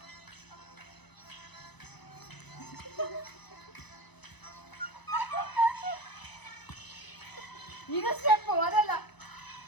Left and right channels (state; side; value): late; right; 0.99 ms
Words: ಇದು ಸ್ಟೆಪ್ ಅದಲ್ಲ